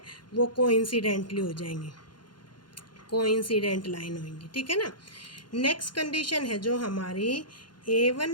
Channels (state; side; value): late; right; 0.71 ms